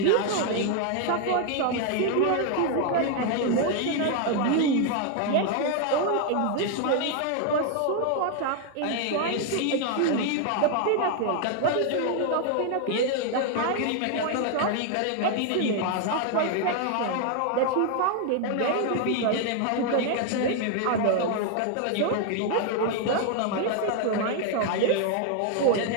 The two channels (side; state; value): both; different; correlation 0.00